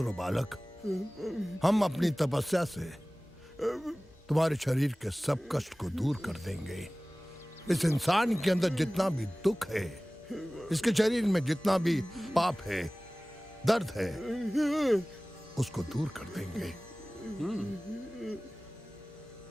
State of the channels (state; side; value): normal; both; correlation 0.98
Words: बालक। हम अपनी तपस्या से तुम्हारे शरीर के सब कष्ट को दूर कर देंगे। इस इंसान के अंदर जितना भी दुख है इसके शरीर में जितना भी पाप है, दर्द है, उसको दूर कर देंगे।